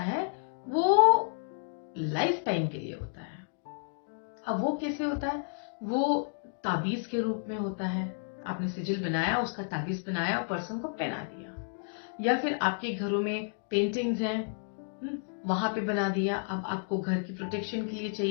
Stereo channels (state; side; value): silent; right; digital silence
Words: वो लाइफ टाइम के लिए होता है। अब वो कैसे होता है, वो ताबीज के रूप में होता है। आपने सिजिल बनाया, उसका ताबीज बनाया और पर्सन को पहना दिया, या फिर आपके घरों में पेंटिंग्स हैं, वहां पे बना दिया। अब आपको घर की प्रोटेक्शन के लिए